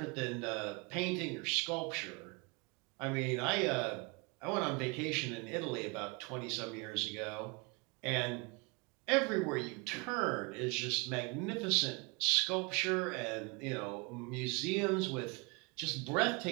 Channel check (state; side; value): quieter; left; 28.9 dB